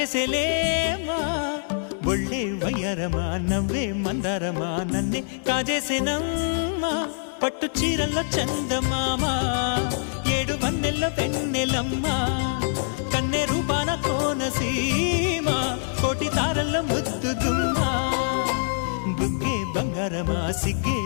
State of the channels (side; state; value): right; silent; digital silence